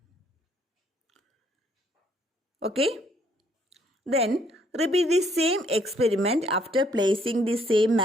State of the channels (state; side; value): normal; both; correlation 0.66